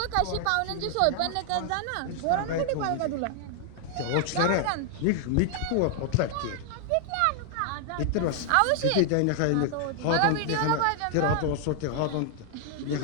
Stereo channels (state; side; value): different; both; correlation 0.00